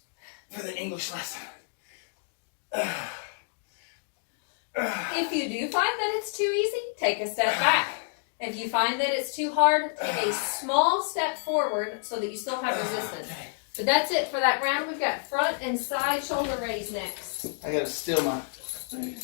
for the English lesson. If you do find that it's too easy, take a step back. If you find that it's too hard, take a small step forward so that you still have resistance. But that's it for that round. We've got front and side shoulder raise next. I gotta steal my.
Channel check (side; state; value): right; silent; 59 dB below the other